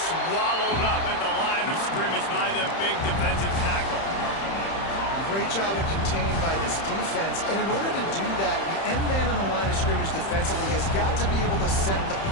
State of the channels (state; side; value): late; right; 31 ms